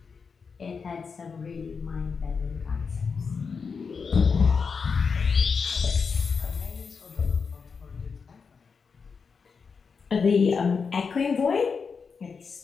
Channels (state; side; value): quieter; right; 5.5 dB